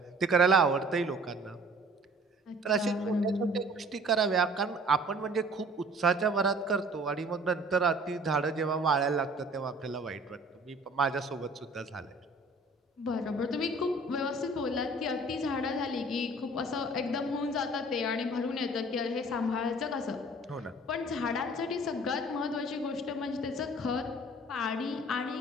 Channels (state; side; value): normal; both; correlation 0.51